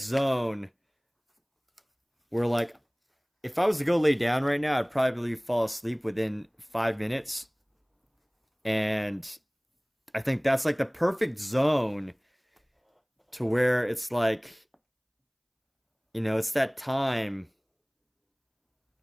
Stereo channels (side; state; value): both; identical; correlation 1.00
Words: where like if I was to go lay down right now, I'd probably fall asleep within 5 minutes. And I think that's like the perfect zone to where it's like, it's that time.